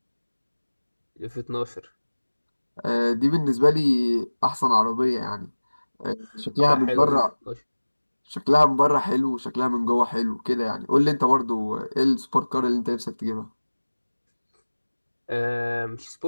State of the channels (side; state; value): both; inverted; correlation -1.00